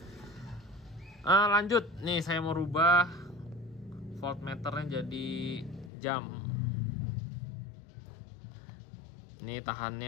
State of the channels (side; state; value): right; drops out; at 5.9 s